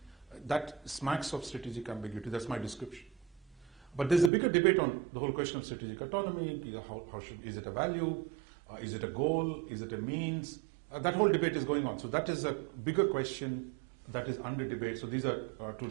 that smacks of strategic ambiguity. That's my description. But there's a bigger debate on the whole question of strategic autonomy. Is it a value? Is it a goal? Is it a means? That whole debate is going on. So that is a bigger question that is under debate. So these are 2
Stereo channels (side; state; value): left; drops out; at 4.3 s